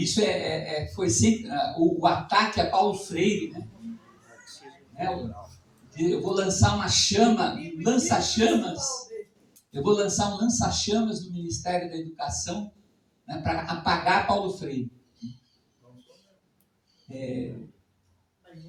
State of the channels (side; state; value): both; identical; correlation 1.00